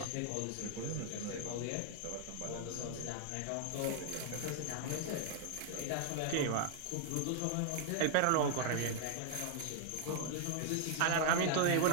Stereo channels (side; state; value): both; different; correlation 0.00